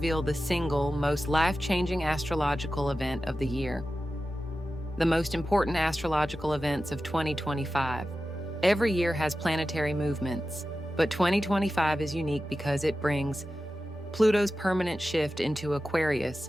the single most life-changing astrological event of the year. The most important astrological events of 2025. Every year has planetary movements, but 2025 is unique because it brings Pluto's permanent shift into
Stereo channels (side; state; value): both; normal; correlation 0.93